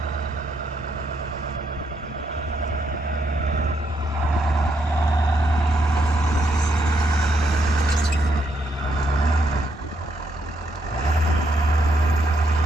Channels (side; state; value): both; normal; correlation 0.76